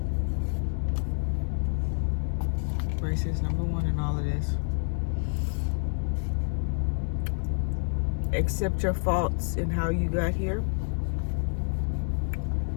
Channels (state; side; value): silent; right; digital silence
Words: Grace is number 1 in all of this. Accept your faults in how you got here.